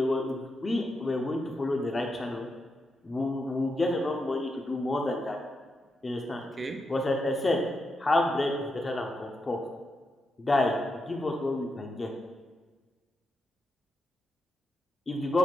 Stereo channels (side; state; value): both; normal; correlation 0.85